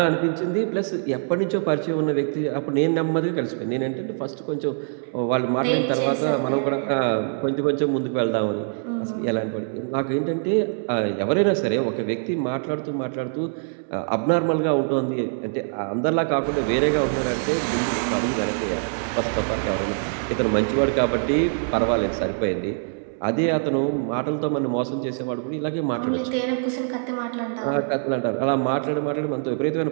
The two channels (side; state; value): left; silent; 63 dB below the other